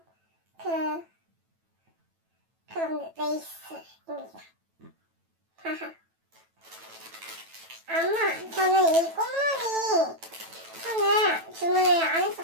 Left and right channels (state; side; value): late; left; 9.1 ms